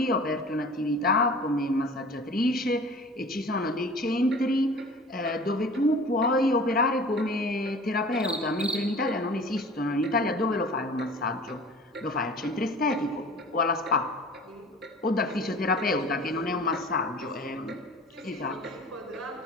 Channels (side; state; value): both; normal; correlation 0.43